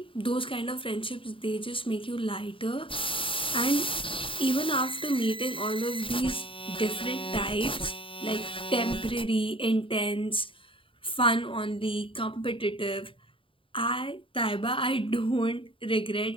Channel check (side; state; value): right; late; 0.25 ms